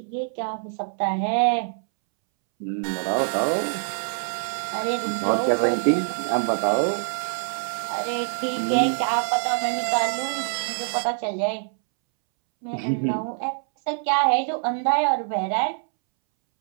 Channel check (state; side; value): silent; left; 62 dB below the other